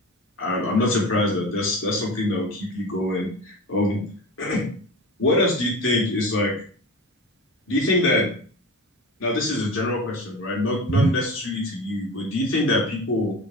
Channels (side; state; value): both; normal; correlation 0.31